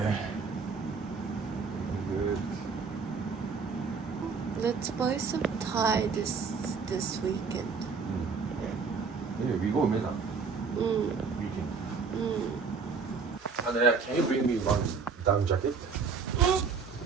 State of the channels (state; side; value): quieter; left; 5.2 dB